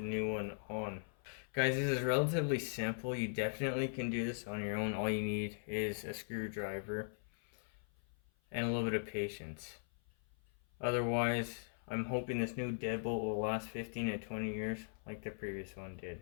one on. Guys, this is relatively simple. You definitely can do this on your own. All you need is a screwdriver and a little bit of patience. Otherwise, I'm hoping this new deadbolt will last 15 to 20 years like the previous one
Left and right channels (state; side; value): silent; right; 51 dB below the other